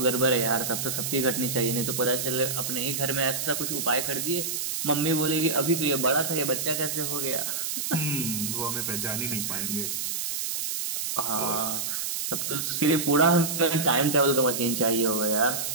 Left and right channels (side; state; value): right; noise; hiss, 2 dB below the sound